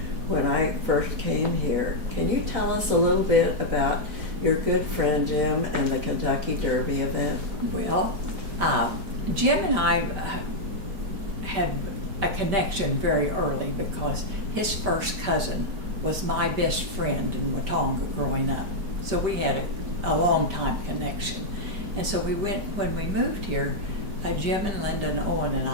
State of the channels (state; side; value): late; left; 5.1 ms